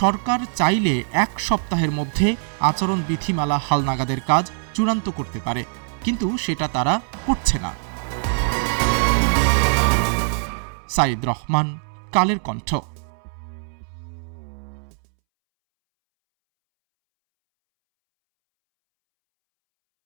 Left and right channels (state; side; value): silent; left; 64 dB below the other